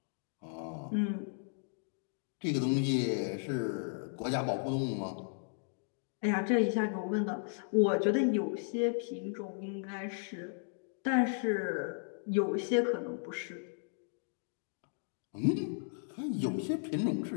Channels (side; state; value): right; silent; digital silence